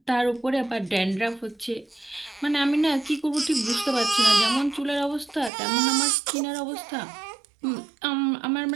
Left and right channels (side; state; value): left; drops out; at 5.5 s